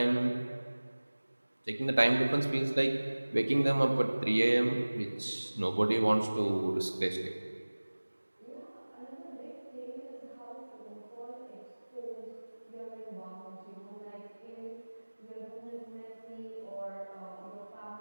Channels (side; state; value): both; inverted; correlation -1.00